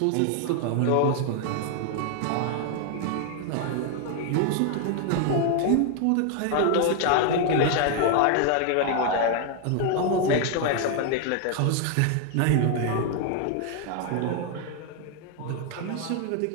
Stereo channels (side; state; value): both; different; correlation 0.00